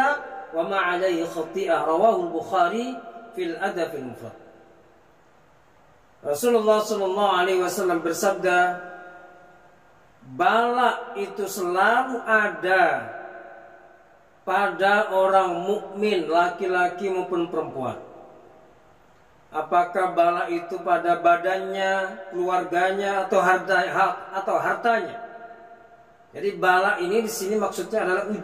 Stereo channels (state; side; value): identical; both; correlation 1.00